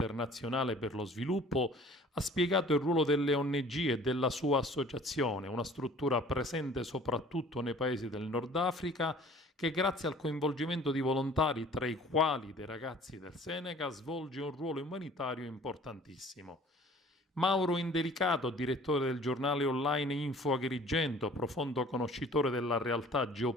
per lo Sviluppo, ha spiegato il ruolo delle ONG e della sua associazione, una struttura presente soprattutto nei paesi del Nord Africa, che grazie al coinvolgimento di volontari, tra i quali dei ragazzi del Senegal, svolge un ruolo umanitario importantissimo. Mauro Indelicato, direttore del giornale online Info Agrigento, profondo conoscitore della realtà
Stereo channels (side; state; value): both; normal; correlation 0.50